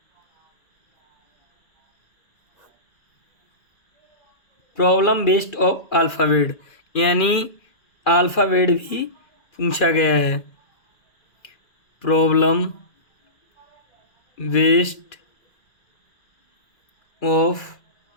प्रॉब्लम बेस्ड ऑफ अल्फ़ाबेट, यानी अल्फ़ाबेट भी पूछा गया है। Problem based of,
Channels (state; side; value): late; right; 2.4 ms